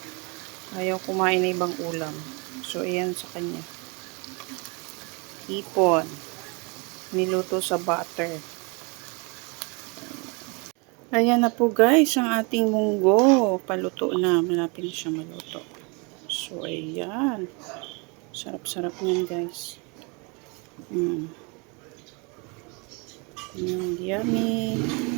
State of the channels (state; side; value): quieter; left; 31.1 dB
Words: Ayaw kumain na ibang ulam. So ayan sa kanya. Hipon. Niluto sa butter. Ayan na po guys ang ating munggo. Paluto na. Malapit na siya maluto. So ayan. Sarap-sarap niyan guys. Yummy.